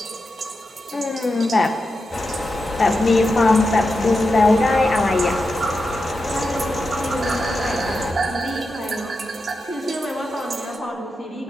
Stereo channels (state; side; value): normal; both; correlation 0.89